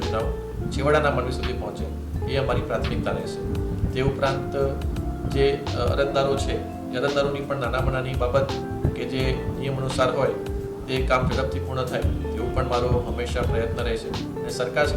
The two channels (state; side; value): identical; both; correlation 1.00